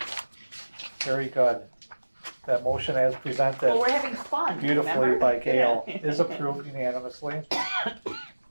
Very good. That motion as Well, presented we're having fun, beautifully remember? by Gail Yeah. is approved unanimously.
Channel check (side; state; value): both; inverted; correlation -1.00